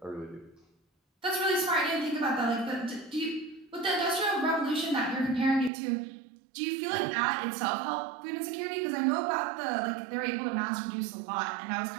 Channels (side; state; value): left; drops out; at 5.7 s